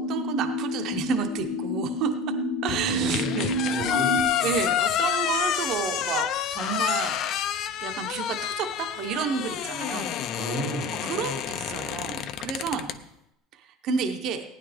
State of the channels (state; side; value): normal; both; correlation 0.34